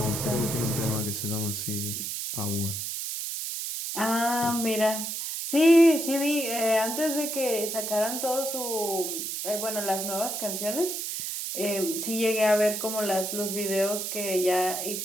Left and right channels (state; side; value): noise; right; hiss, 4 dB below the sound